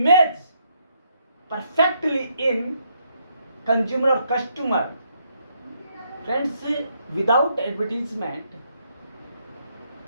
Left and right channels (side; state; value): both; inverted; correlation -0.74